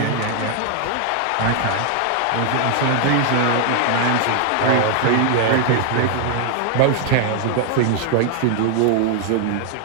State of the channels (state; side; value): different; both; correlation 0.00